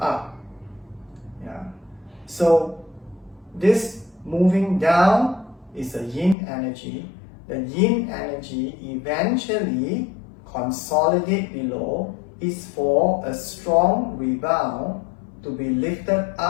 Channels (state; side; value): drops out; right; at 6.4 s